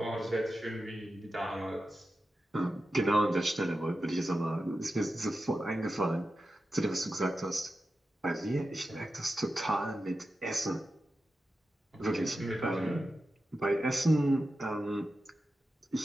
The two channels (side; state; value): both; normal; correlation 0.91